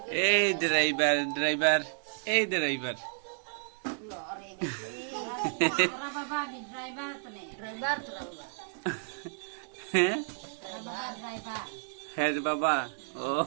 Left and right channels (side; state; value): left; silent; digital silence